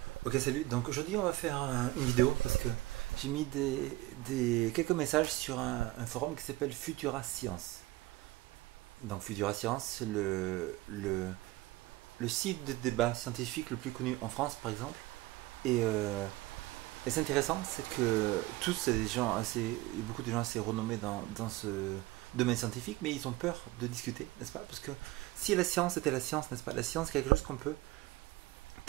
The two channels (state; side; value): quieter; left; 18.6 dB